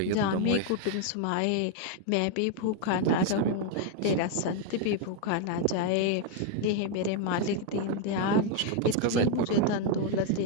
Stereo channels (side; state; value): both; different; correlation 0.01